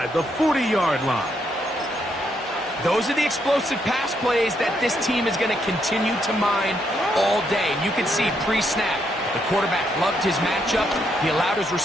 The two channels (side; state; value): both; normal; correlation 0.76